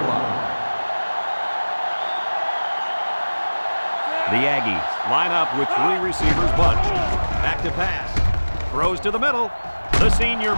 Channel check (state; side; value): inverted; both; correlation -1.00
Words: line. The Aggies line up with 3 receivers bunched. Back to pass. Throws to the middle. The senior